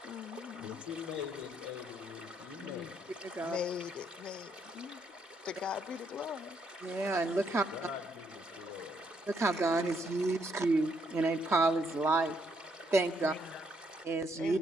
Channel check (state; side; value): normal; both; correlation 0.73